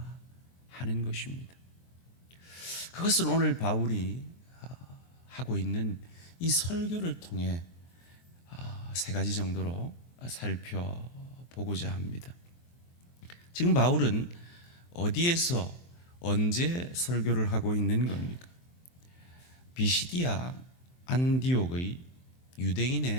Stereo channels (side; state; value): right; late; 23 ms